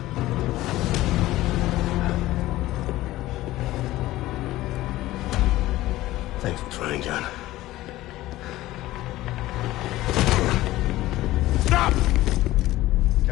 Thanks for trying, John. Stop!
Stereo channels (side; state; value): right; quieter; 16.5 dB